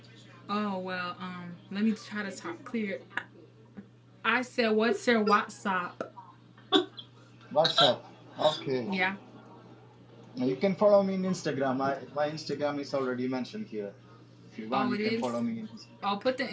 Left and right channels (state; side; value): identical; both; correlation 1.00